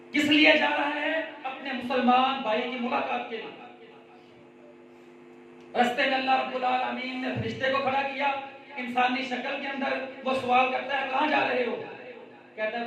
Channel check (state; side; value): identical; both; correlation 1.00